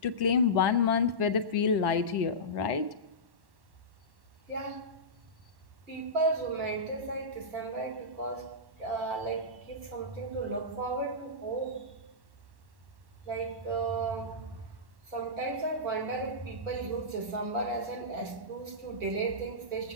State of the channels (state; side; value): late; left; 1.1 ms